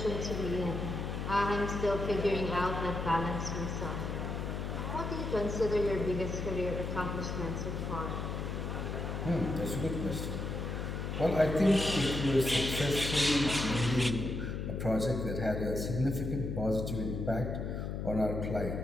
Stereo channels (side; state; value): left; noise; hum, 3 dB below the sound